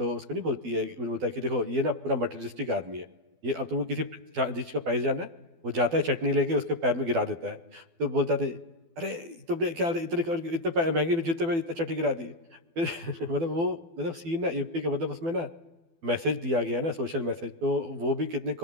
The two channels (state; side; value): late; left; 12 ms